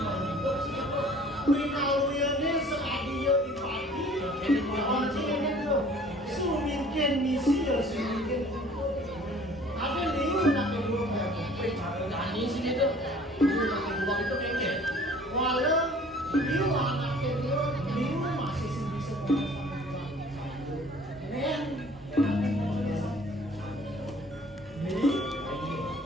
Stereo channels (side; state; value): both; normal; correlation 0.51